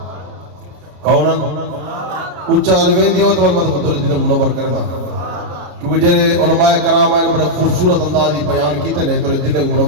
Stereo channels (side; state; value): left; late; 33 ms